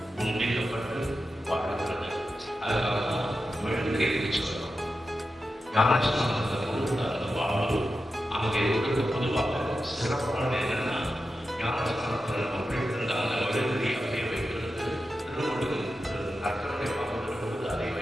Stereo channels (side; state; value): both; normal; correlation 0.91